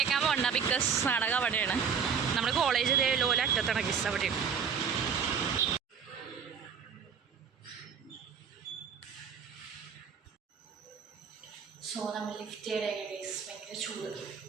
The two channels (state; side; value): quieter; left; 6.8 dB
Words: പോകണ്ട. ബിക്കോസ് നാടകം അവിടെയാണ്. നമ്മുടെ കോളേജ് ലോല അറ്റത്താണ് ഗൈസ്. അവിടെയാണ്. നമ്മൾ ലിഫ്റ്റ് ചെയ്ത ഗൈസ്. ഭയങ്കര ചൂട്.